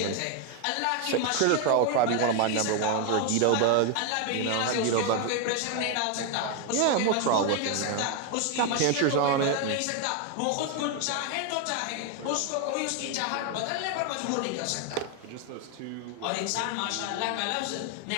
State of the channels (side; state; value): both; different; correlation 0.01